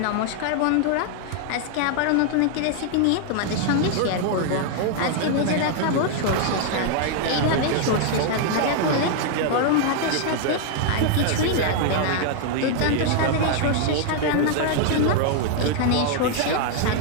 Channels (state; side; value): different; both; correlation 0.00